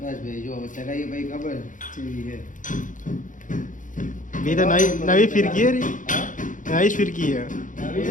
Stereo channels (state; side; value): late; right; 0.38 ms